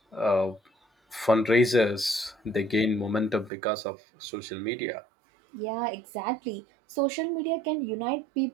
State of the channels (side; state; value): left; drops out; at 3.5 s